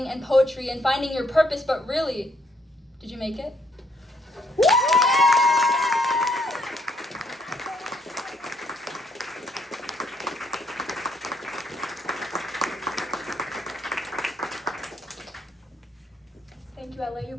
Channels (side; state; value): both; normal; correlation 0.71